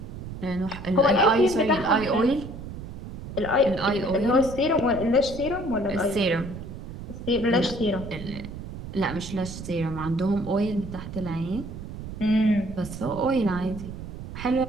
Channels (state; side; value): noise; right; rumble, 10 dB below the sound